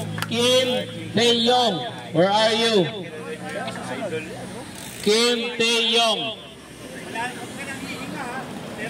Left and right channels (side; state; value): both; identical; correlation 1.00